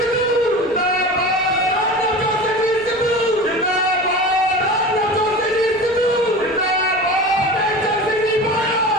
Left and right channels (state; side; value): noise; right; rumble, 25 dB below the sound